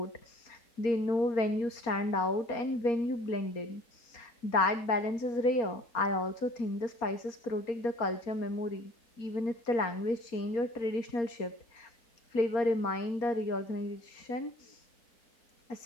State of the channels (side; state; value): right; late; 4.3 ms